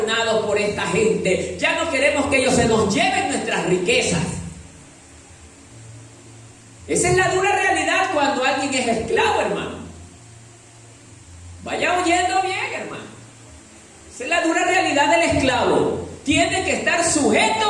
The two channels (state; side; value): identical; both; correlation 1.00